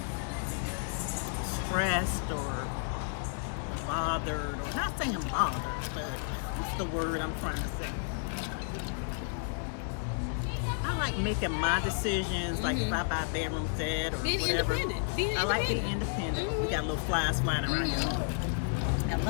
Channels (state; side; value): silent; right; digital silence